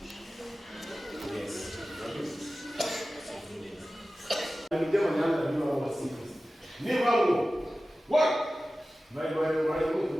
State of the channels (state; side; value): normal; both; correlation 0.95